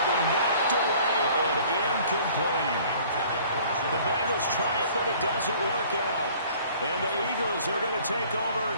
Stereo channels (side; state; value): both; inverted; correlation -0.53